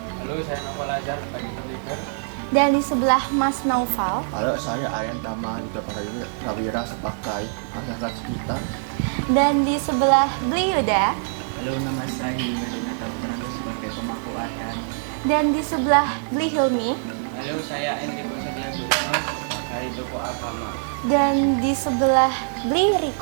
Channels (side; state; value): left; silent; 60 dB below the other